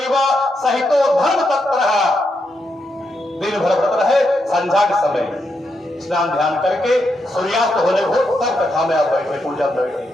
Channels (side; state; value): both; normal; correlation 0.82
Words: सहितो धर्म तत्परः। दिन भर व्रत रहे, संध्या के समय स्नान ध्यान करके सूर्यास्त होने हो तब कथा में आप बैठे, पूजा में बैठे।